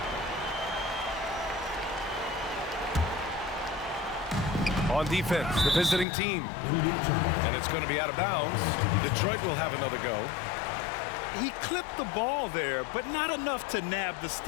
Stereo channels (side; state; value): right; drops out; at 6.1 s